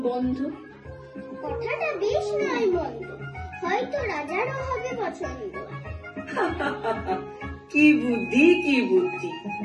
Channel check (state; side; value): identical; both; correlation 1.00